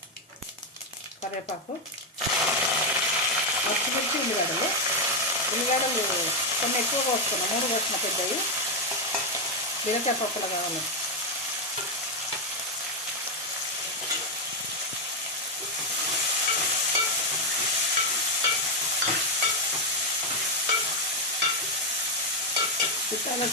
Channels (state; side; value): normal; both; correlation 0.03